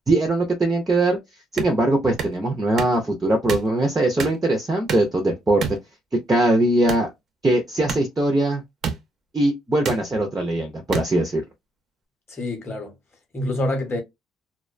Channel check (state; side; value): normal; both; correlation 0.77